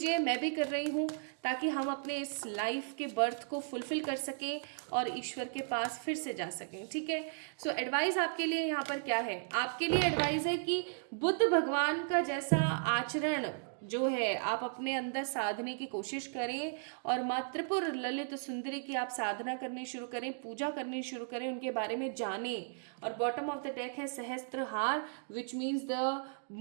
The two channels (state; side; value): silent; left; digital silence